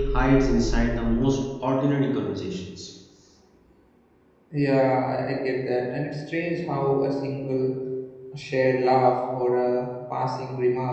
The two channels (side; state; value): both; identical; correlation 1.00